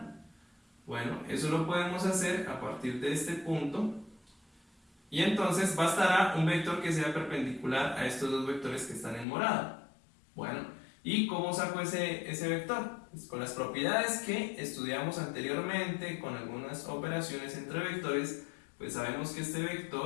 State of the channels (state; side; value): drops out; right; at 9.2 s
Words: Bueno, eso lo podemos hacer a partir de este punto. Y entonces bastará un vector que sea perpendicular a estos dos vectores que están en morado. Bueno, ¿y cómo saco ese vector? Pues con las propiedades que estudiamos anteriormente, con algunas operaciones entre vectores, pues sabemos que este